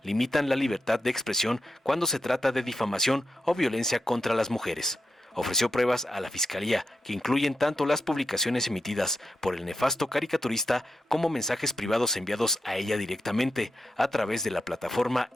limitan la libertad de expresión cuando se trata de difamación o violencia contra las mujeres. Ofreció pruebas a la Fiscalía que incluyen tanto las publicaciones emitidas por el nefasto caricaturista como mensajes privados enviados a ella directamente a través de la plataforma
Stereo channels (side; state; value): both; normal; correlation 0.87